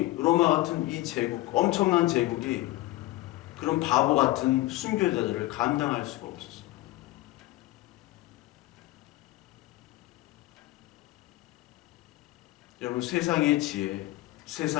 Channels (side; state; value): right; quieter; 17.9 dB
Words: 로마 같은 이 제국, 엄청난 제국이 그런 바보 같은 순교자들을 감당할 수가 없었어요. 여러분, 세상의 지혜,